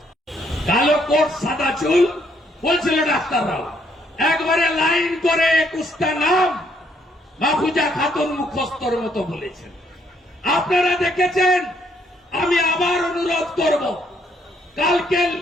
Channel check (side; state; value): both; normal; correlation 0.70